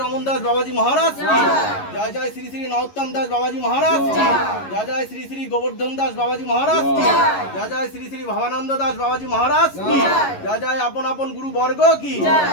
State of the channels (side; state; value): right; late; 11 ms